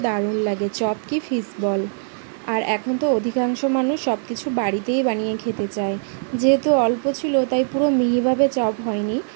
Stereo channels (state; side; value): silent; left; 65 dB below the other